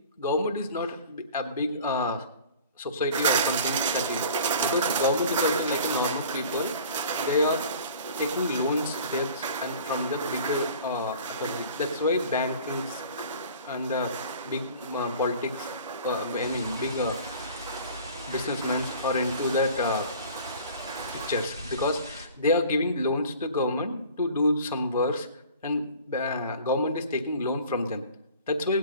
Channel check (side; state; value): both; inverted; correlation -0.44